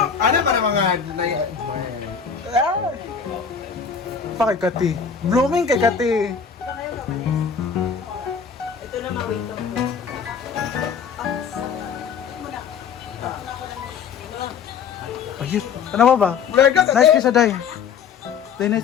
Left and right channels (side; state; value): right; quieter; 6.6 dB